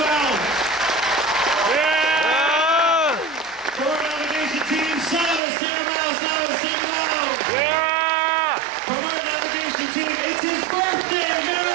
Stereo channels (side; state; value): left; drops out; at 5.4 s